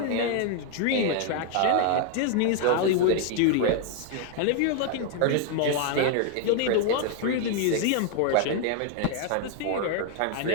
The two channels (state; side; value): different; both; correlation 0.00